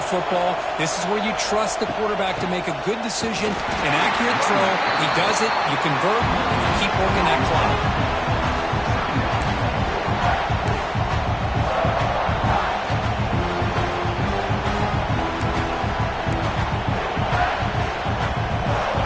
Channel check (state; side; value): identical; both; correlation 1.00